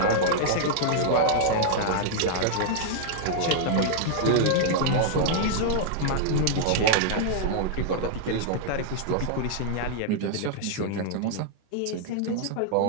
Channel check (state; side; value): different; both; correlation -0.01